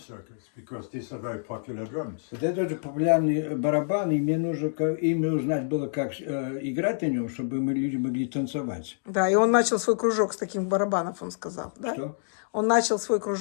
because these are very popular drums. Вот это тоже популярный барабан, и мне нужно именно узнать было, как играть на нем, чтобы мы люди могли танцевать. Да, и он начал свой кружок с таких барабанов, он сказал, да? Что? Он начал свой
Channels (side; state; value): right; silent; digital silence